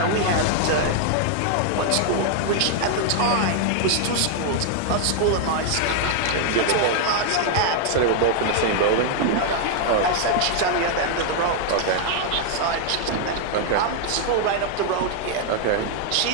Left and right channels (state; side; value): different; both; correlation 0.00